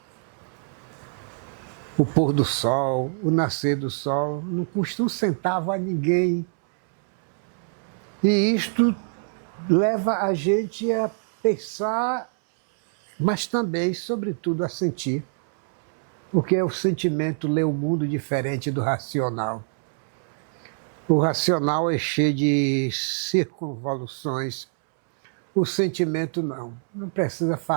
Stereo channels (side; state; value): left; silent; 62 dB below the other